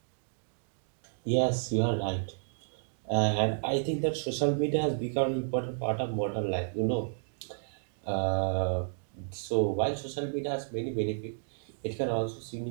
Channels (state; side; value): silent; left; digital silence